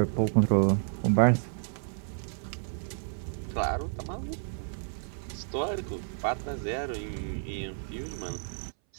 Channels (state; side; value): silent; left; 57 dB below the other